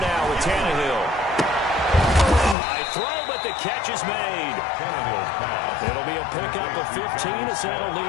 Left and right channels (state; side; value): drops out; right; at 2.6 s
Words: with Tannehill. High throw, but the catch is made. Tannehill's pass. It'll be a pickup of 15 as that'll